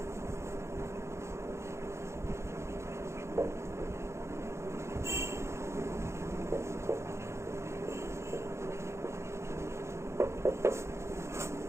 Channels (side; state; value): left; late; 0.13 ms